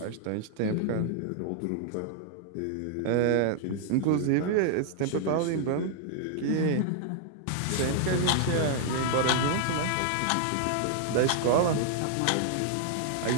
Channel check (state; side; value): different; both; correlation 0.00